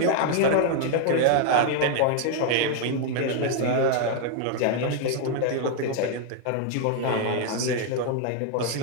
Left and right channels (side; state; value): both; different; correlation 0.00